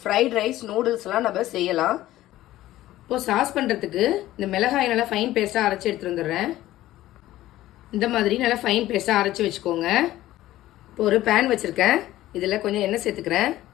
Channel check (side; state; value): right; quieter; 15.1 dB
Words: ரைஸ், நூடுல்ஸ்லாம் நம்ம செய்யலாம். இப்போ சாஸ் பண்ணுறதுக்கு இந்த மிளகாய் நல்லா ஃபைன் பேஸ்ட்டாக அரைச்சி எடுத்துகிட்டு வந்துடுறேன். இந்த மாதிரி நல்லா ஃபைன் பேஸ்ட்டாக அரைச்சி வச்சுக்கோங்க. இப்போ ஒரு பேன் வச்சுருக்கேன். இதில் கொஞ்சம் எண்ணெய் சேர்த்துக்கிறேன்.